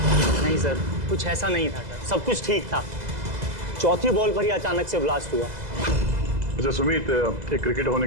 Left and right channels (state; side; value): late; left; 2.0 ms